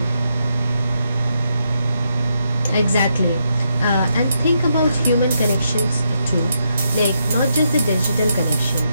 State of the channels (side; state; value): both; inverted; correlation -0.80